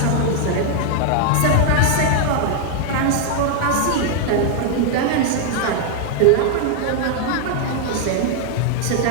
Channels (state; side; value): different; both; correlation 0.00